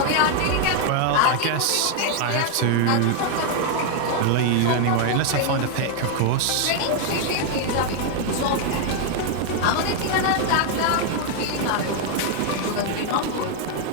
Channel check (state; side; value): different; both; correlation 0.00